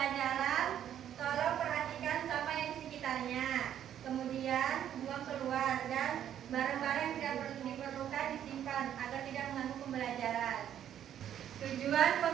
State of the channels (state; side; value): quieter; left; 10.3 dB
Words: tolong perhatikan sampah yang di sekitarnya. Kemudian buang keluar dan barang-barang yang tidak diperlukan disimpan agar tidak mengganggu pembelajaran. Tujuan